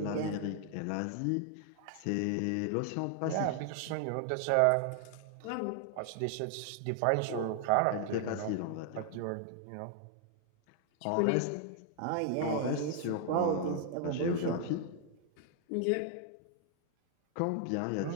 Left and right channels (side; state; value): both; different; correlation 0.00